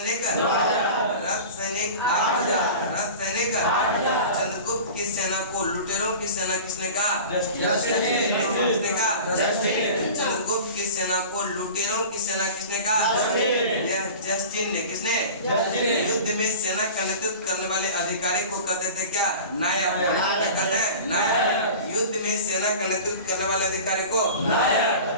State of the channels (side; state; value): both; inverted; correlation -0.36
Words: रथ सैनिक 8,000। रथ सैनिक 8,000। चंद्रगुप्त की सेना को लुटेरों की सेना किसने कहा? किसने कहा? चंद्रगुप्त की सेना को लुटेरों की सेना किसने कहा? यह जस्टिन ने। किसने? युद्ध में सेना का नेतृत्व करने वाले अधिकारी को कहते थे क्या? नायक। क्या कहते हैं? नायक। युद्ध में सेना का नेतृत्व करने वाले अधिकारी को